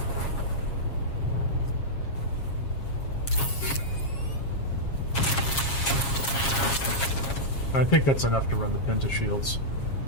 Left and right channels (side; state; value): right; late; 7.4 ms